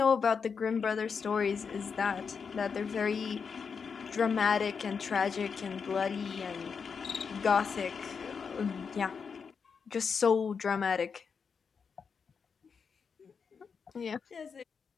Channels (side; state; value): right; quieter; 5.9 dB